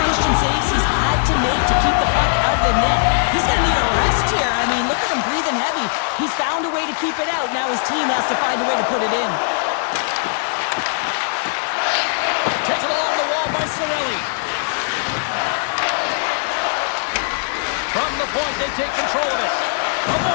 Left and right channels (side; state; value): right; silent; digital silence